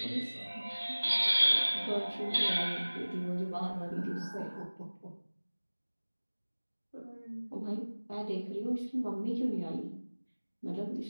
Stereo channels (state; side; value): inverted; both; correlation -1.00